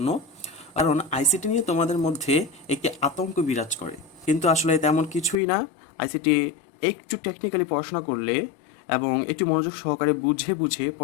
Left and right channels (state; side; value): drops out; right; at 5.4 s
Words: কারণ আইসিটি নিয়ে তোমাদের মধ্যে একটি আতঙ্ক বিরাজ করে, কিন্তু আসলে তেমন কিছুই না। আইসিটি একটু টেকনিক্যালি পড়াশোনা করলে এবং একটু মনোযোগ সহকারে বুঝে বুঝে